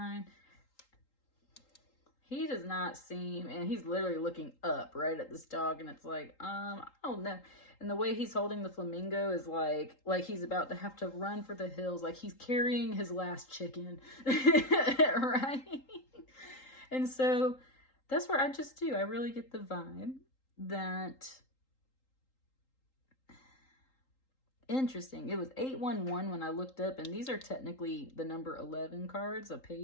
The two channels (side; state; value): right; late; 3.8 ms